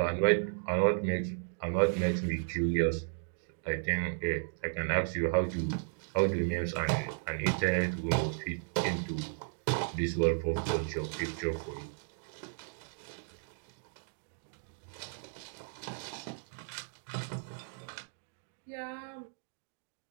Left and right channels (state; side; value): silent; left; digital silence